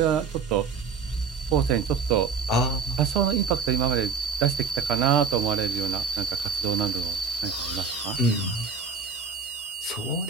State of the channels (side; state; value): left; quieter; 5.4 dB